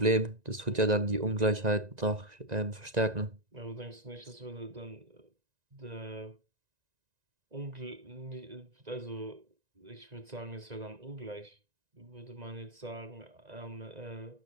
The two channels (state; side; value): late; left; 1.9 ms